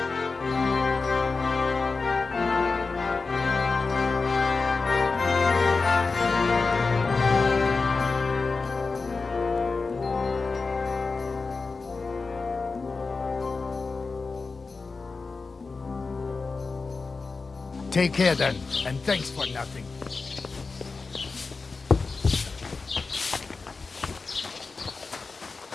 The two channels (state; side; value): quieter; right; 4.2 dB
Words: Take care then, and thanks for nothing.